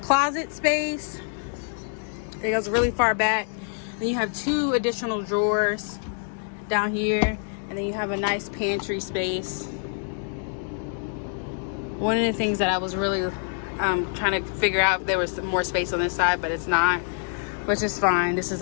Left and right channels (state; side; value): silent; right; 61 dB below the other